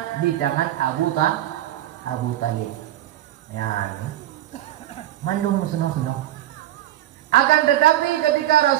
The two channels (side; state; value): left; quieter; 13.3 dB